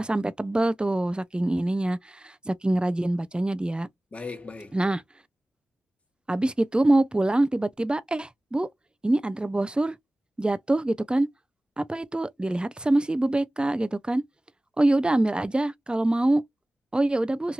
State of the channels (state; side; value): normal; both; correlation 0.98